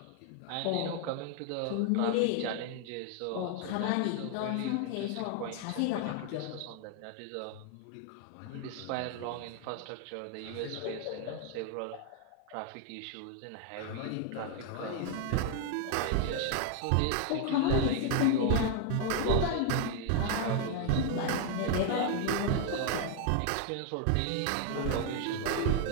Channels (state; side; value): different; both; correlation 0.00